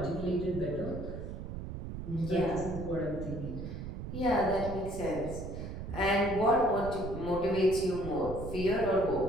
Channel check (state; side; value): noise; right; rumble, 7 dB below the sound